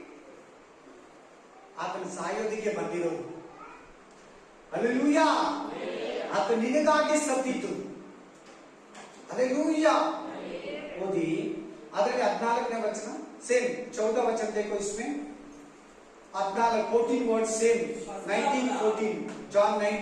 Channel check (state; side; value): identical; both; correlation 1.00